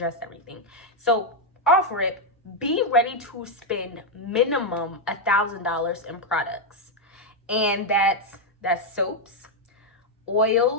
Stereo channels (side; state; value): both; normal; correlation 0.01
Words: everything. So off rip, be ready to spend minimum $1,000 in products. And that's soaps,